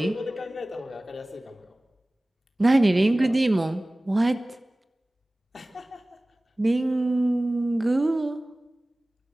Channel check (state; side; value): normal; both; correlation 0.98